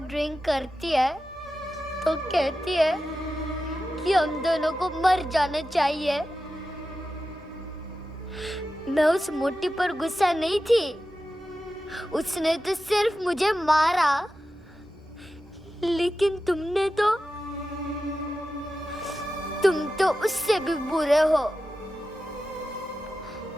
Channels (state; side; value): normal; both; correlation 0.92